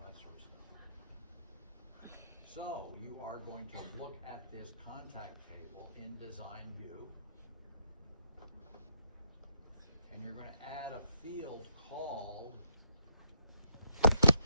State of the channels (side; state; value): both; inverted; correlation -0.75